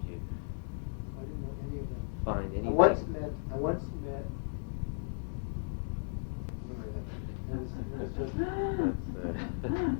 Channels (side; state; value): right; silent; digital silence